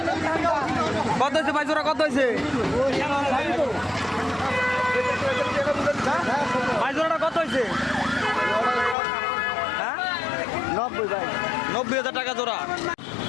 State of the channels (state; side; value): drops out; right; at 9.0 s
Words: কত হয়েছে ভাই জোড়া কত হয়েছে ভাই জোড়াটা কত হয়েছে ৯০,০০০ টাকা জোড়া